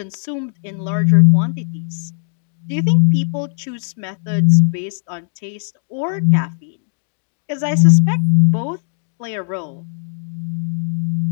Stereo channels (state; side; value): silent; right; 67 dB below the other